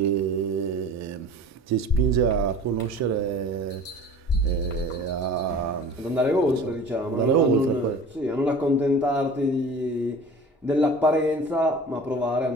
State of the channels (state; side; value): normal; both; correlation 0.41